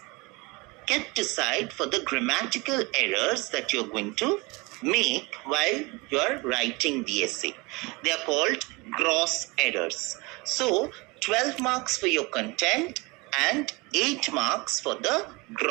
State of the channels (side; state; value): left; quieter; 25.6 dB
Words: kept aside for the grammatical errors that you're going to make while you're writing the essay. They are called gross errors. So 12 marks for your content and 8 marks for the